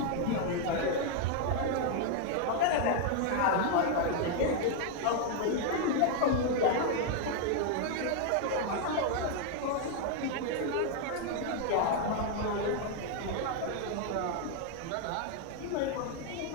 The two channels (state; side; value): different; both; correlation 0.00